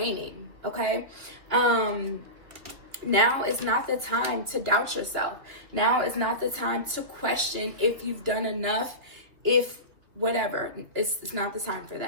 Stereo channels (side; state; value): left; late; 2.7 ms